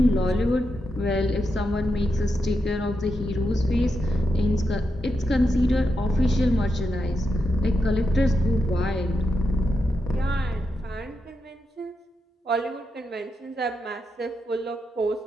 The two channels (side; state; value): both; normal; correlation 0.85